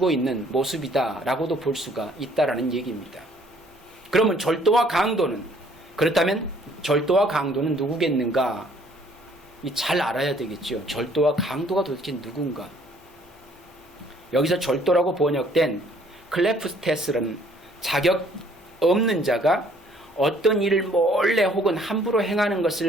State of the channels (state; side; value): normal; both; correlation 0.60